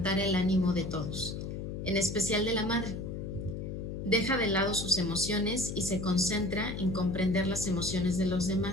el ánimo de todos, en especial de la madre. Deja de lado sus emociones y se concentra en comprender las emociones de los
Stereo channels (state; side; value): noise; left; hum, 6 dB below the sound